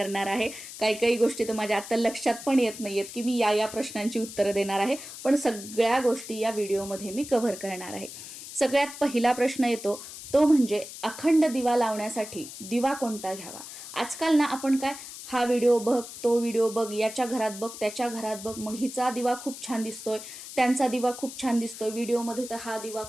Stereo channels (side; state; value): left; noise; hiss, 12 dB below the sound